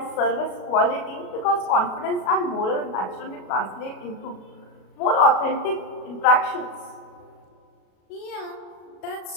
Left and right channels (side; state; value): right; late; 37 ms